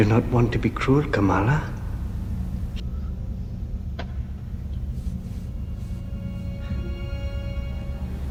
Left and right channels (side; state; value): both; identical; correlation 1.00